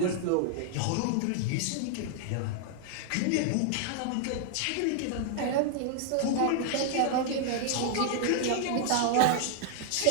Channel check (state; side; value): different; both; correlation 0.00